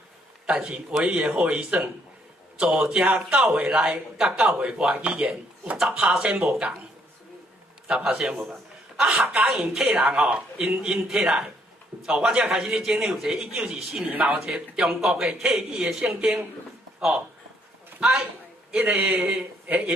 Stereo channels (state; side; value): normal; both; correlation 0.69